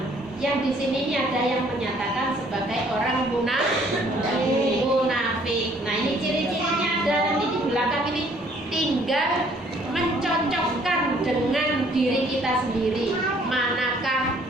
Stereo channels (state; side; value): normal; both; correlation 0.61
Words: Yang di sini ini ada yang menyatakan sebagai orang munafik. Nah ini ciri-cirinya ada nanti di belakang ini. Tinggal mencocokkan dengan diri kita sendiri. Manakah